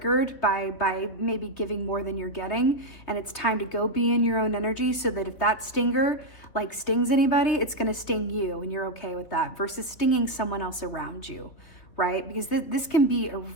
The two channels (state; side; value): late; right; 3.6 ms